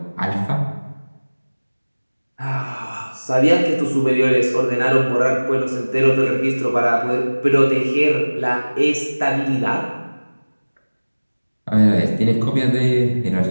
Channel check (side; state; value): both; inverted; correlation -1.00